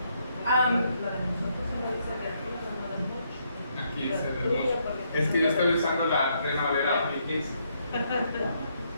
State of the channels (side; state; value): both; inverted; correlation -0.75